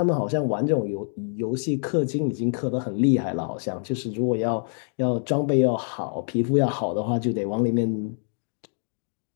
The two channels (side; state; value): right; silent; 59 dB below the other